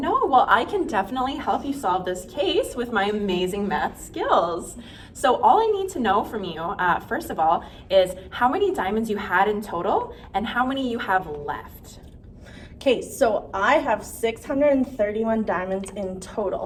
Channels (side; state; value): both; identical; correlation 1.00